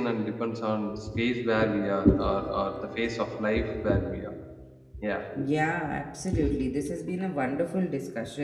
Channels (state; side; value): identical; both; correlation 1.00